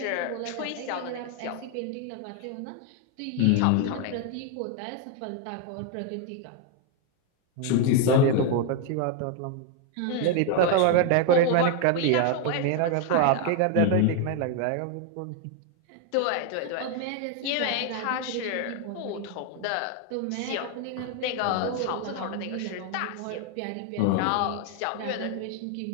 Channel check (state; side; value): different; both; correlation 0.01